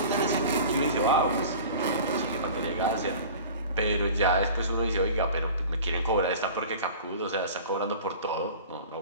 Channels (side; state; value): both; inverted; correlation -0.40